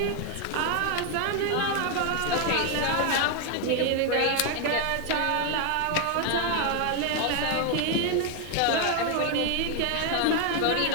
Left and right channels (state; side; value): different; both; correlation 0.01